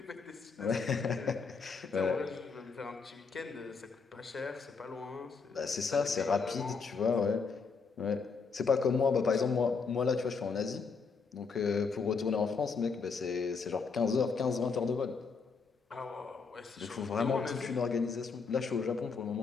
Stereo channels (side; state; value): right; quieter; 5.1 dB